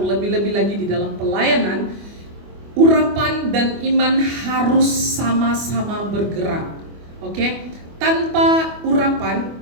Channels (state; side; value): late; left; 25 ms